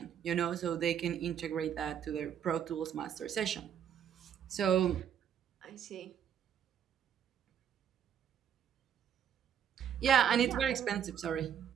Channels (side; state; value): left; quieter; 8.9 dB